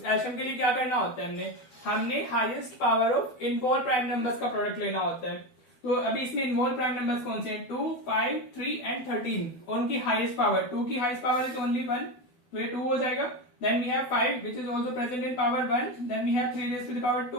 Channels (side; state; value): right; late; 12 ms